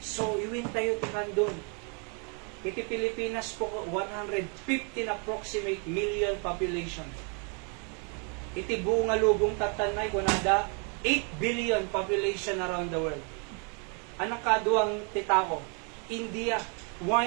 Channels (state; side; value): quieter; left; 37.4 dB